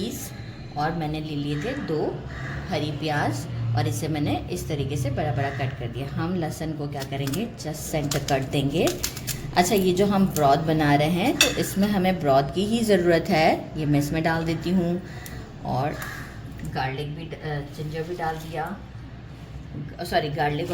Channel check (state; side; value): identical; both; correlation 1.00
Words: और मैंने ले लिए थे 2 हरी प्याज और इसे मैंने इस तरीके से बड़ा बड़ा कट कर दिया। हम लहसुन को क्या करेंगे, जस्ट सेंटर कट देंगे। अच्छा, ये जो हम ब्रॉथ बना रहे हैं तो इसमें हमें ब्रॉथ की ही ज़रूरत है। ये मैं इसमें डाल देती हूँ और गार्लिक भी, जिंजर भी डाल दिया, सॉरी गार्लिक